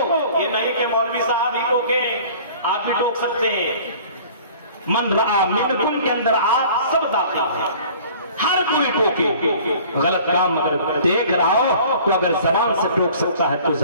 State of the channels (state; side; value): inverted; both; correlation -0.48